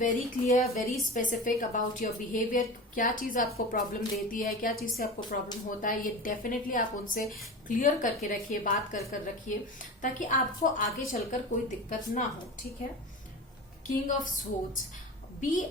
clear, very specific about your behaviour. क्या चीज आपको प्रॉब्लम देती है, क्या चीज से आपको प्रॉब्लम होता है, ये डेफिनेटली आप उनसे क्लियर करके रखिए, बात कर रखिए, ताकि आपको आगे चलकर कोई दिक्कत ना हो। ठीक है। King of swords, B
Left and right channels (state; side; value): normal; both; correlation 0.30